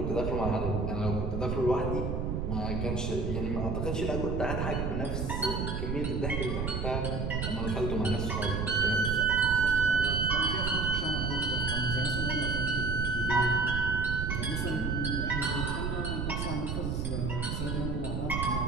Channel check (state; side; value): noise; right; rumble, 1 dB below the sound